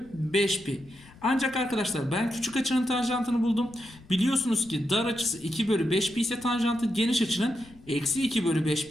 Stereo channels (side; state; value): left; noise; rumble, 23 dB below the sound